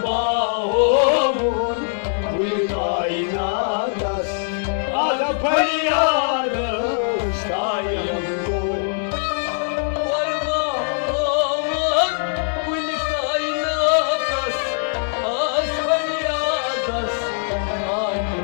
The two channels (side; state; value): right; silent; digital silence